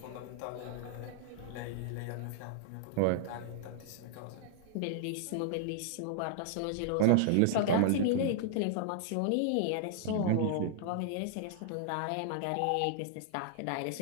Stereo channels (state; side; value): different; both; correlation -0.01